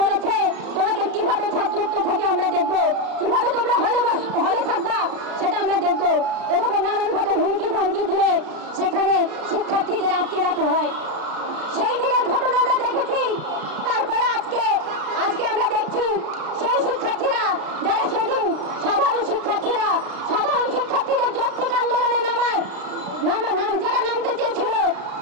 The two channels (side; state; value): left; late; 33 ms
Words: বলেছে তোমাদের কিভাবে ছাত্রত্ব থেকে আমরা দেখবো, কিভাবে তোমরা হলে থাকবা সেটা আমরা দেখবো। এভাবে নানানভাবে হুমকি ধমকি দিয়ে সেখানে শিক্ষার্থীদের আটকে রাখা হয়। সেই দিনের ঘটনা আমরা দেখেছি। তারপরে আজকে আমরা দেখছি সেই শিক্ষার্থীরা যারা সেদিন সাধারণ শিক্ষার্থীদের যৌক্তিক আন্দোলনে যারা নামতে চেয়েছিল